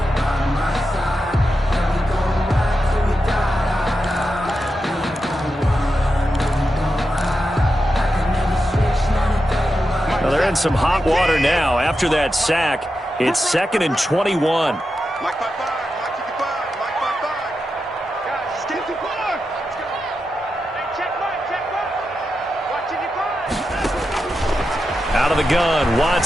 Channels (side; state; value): both; normal; correlation 0.89